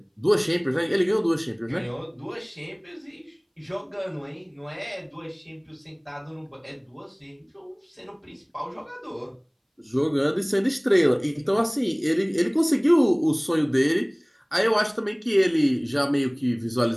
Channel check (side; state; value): both; identical; correlation 1.00